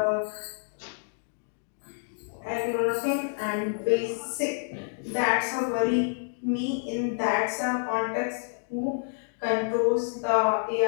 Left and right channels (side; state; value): right; silent; digital silence